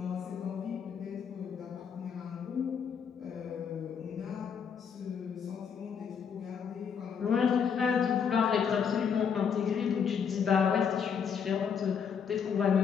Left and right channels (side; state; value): right; quieter; 7.0 dB